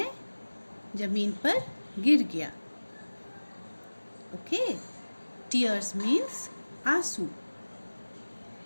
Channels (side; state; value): both; inverted; correlation -1.00